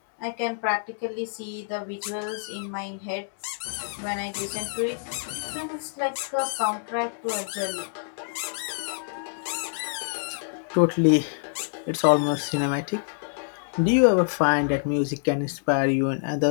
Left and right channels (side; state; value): right; silent; 60 dB below the other